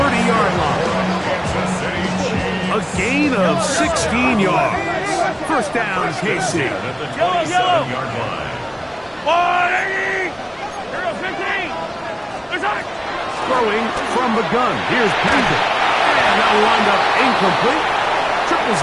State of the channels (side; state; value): both; identical; correlation 1.00